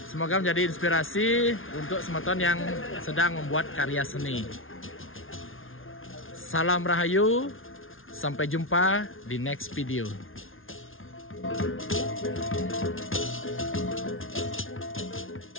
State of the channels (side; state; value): right; late; 0.59 ms